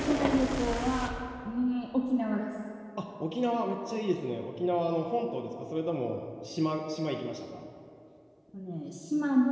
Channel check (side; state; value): both; identical; correlation 1.00